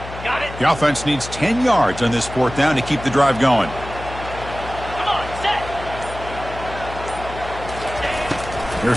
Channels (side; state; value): left; noise; hum, 12 dB below the sound